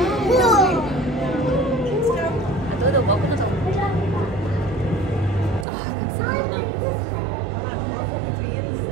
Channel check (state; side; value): drops out; left; at 5.7 s